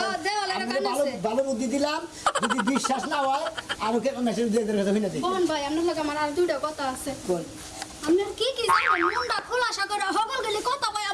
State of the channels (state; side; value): identical; both; correlation 1.00